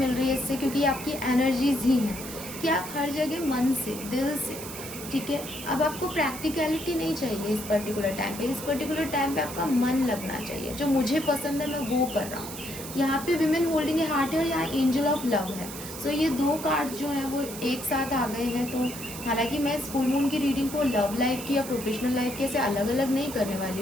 रही है इससे, क्योंकि आपकी एनर्जीज ही हैं कि आप हर जगह मन से, दिल से, ठीक है। अब आपको प्रैक्टिकलिटी नहीं चाहिए इस पर्टिकुलर टाइम पे। इस पर्टिकुलर टाइम पे आपका मन लगना चाहिए। जो मुझे पसंद है मैं वो कर रहा हूँ। यहाँ पे विमेन होल्डिंग ए हार्ट है और यहाँ एंजल ऑफ लव है। सो ये दो कार्ड जो हैं वो एक साथ आ गए हैं। तो हालांकि मैं इस फुल मून की रीडिंग को लव लाइफ की या प्रोफेशनल लाइफ के से अलग अलग नहीं करने वाली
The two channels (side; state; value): right; noise; hiss, 11 dB below the sound